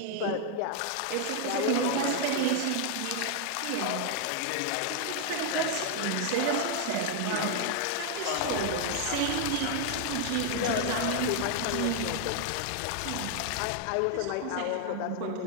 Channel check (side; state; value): both; different; correlation 0.00